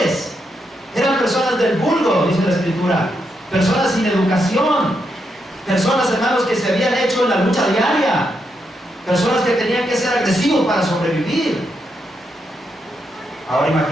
eran personas del vulgo, dice la Escritura, personas sin educación, personas, hermanos, que se habían hecho en la lucha diaria, personas que tenían que ser agresivos para sobrevivir. Ahora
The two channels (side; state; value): both; normal; correlation 0.81